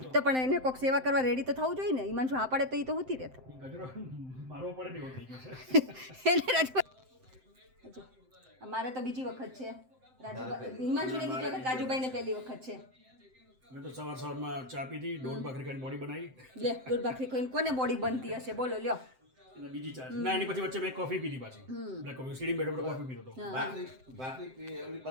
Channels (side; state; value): left; late; 7.7 ms